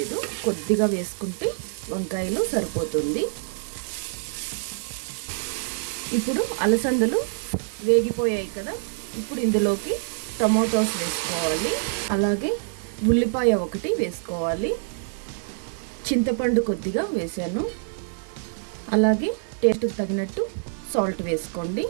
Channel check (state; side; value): silent; left; digital silence